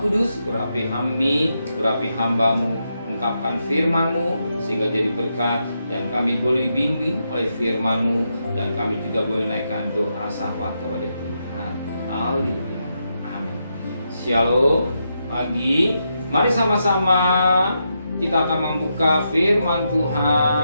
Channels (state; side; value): inverted; both; correlation -0.83